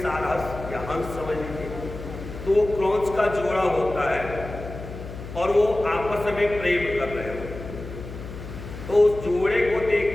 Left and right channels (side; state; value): left; noise; hum, 11 dB below the sound